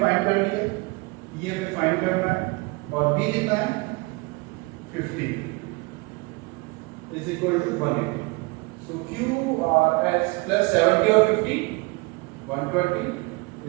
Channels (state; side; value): quieter; left; 26.1 dB